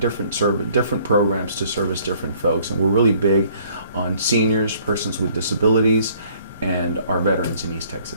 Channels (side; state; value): both; inverted; correlation -0.60